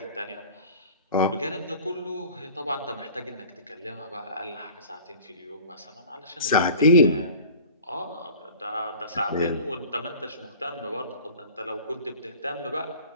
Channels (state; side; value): inverted; both; correlation -0.43